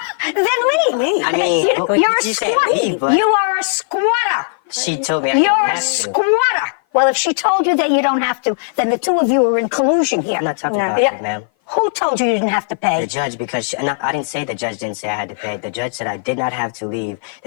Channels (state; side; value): silent; right; 56 dB below the other